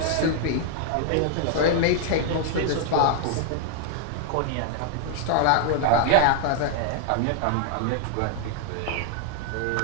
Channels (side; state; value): both; different; correlation 0.00